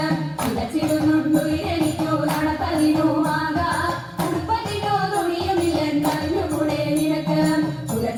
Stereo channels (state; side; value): identical; both; correlation 1.00